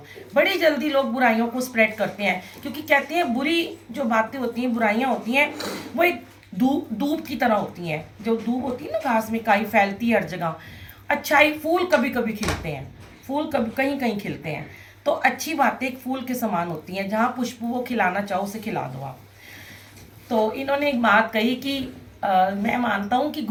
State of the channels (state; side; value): identical; both; correlation 1.00